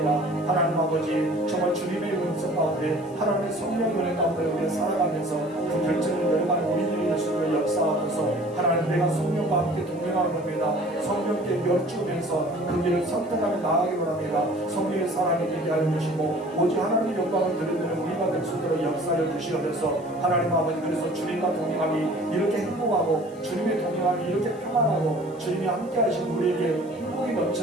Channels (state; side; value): noise; left; hiss, 27 dB below the sound